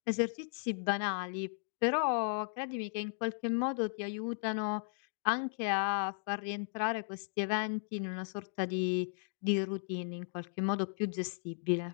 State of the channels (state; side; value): silent; right; digital silence